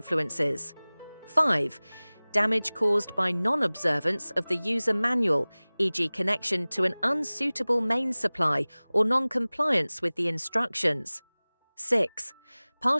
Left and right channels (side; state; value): both; inverted; correlation -1.00